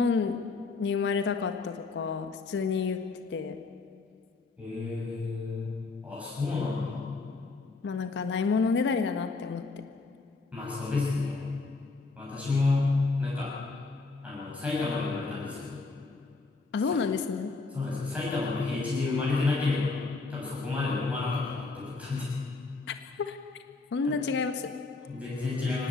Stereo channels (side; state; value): right; quieter; 3.9 dB